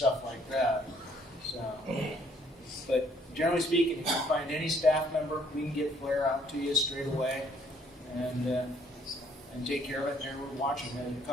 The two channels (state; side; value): normal; both; correlation 0.64